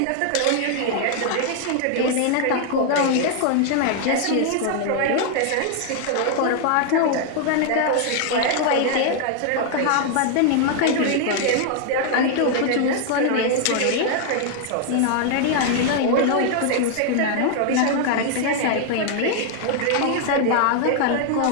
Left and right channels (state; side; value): different; both; correlation 0.00